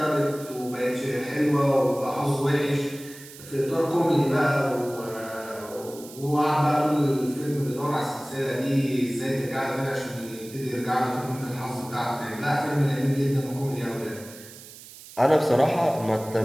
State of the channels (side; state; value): right; noise; hiss, 17 dB below the sound